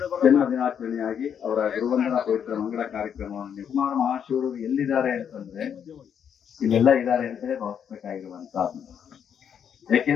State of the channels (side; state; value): right; quieter; 8.2 dB